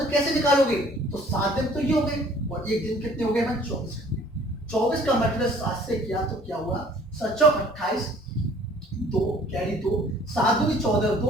कैसे निकालोगे? तो 7 दिन तो ये हो गए और एक दिन कितने हो गए? 24 घंटे। 24 का मल्टीप्लाई 7 से किया तो क्या हुआ? 7 × 28, 2 कैरी 2, 7 × 2 = 14,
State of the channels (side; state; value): both; normal; correlation 0.54